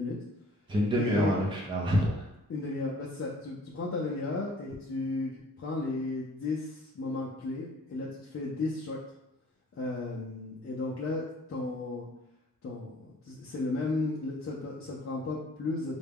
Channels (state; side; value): normal; both; correlation 0.55